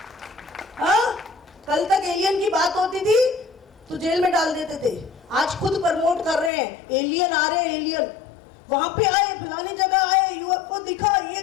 हाँ, कल तक एलियन की बात होती थी तो जेल में डाल देते थे, आज खुद प्रमोट कर रहे हैं, एलियन आ रहे हैं, एलियन वहां पे आए, फलानी जगह आए, यूएफओ दिखा, ये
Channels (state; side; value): drops out; right; at 6.5 s